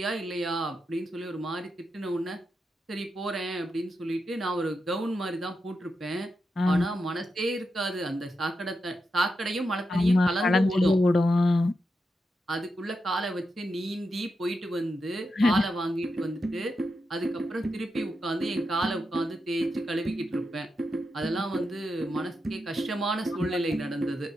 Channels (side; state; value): both; normal; correlation 0.87